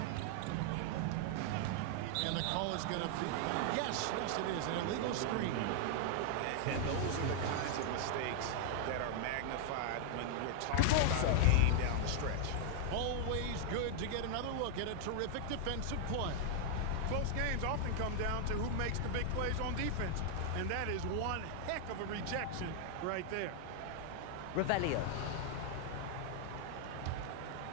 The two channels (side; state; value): both; different; correlation 0.00